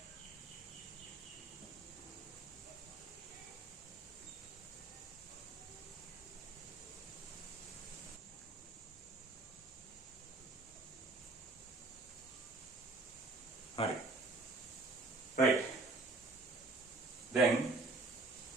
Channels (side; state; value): left; quieter; 3.3 dB